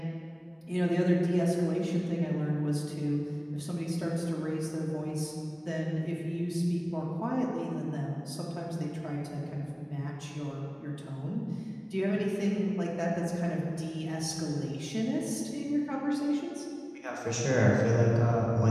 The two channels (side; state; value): both; identical; correlation 1.00